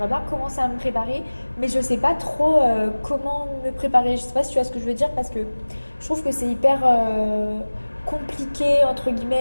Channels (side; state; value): both; inverted; correlation -1.00